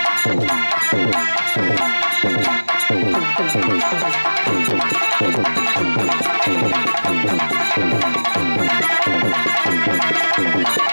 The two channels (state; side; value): inverted; both; correlation -1.00